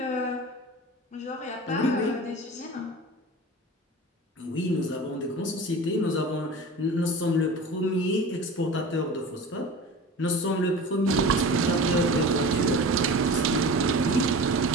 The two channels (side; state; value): both; normal; correlation 0.35